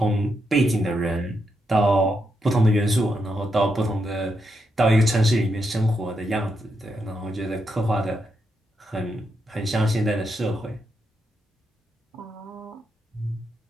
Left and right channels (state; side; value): normal; both; correlation 0.82